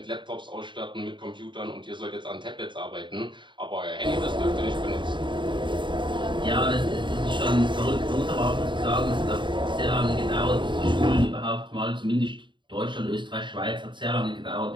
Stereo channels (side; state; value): left; late; 0.23 ms